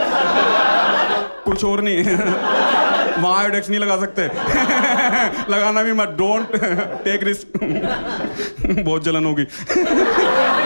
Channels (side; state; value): both; inverted; correlation -1.00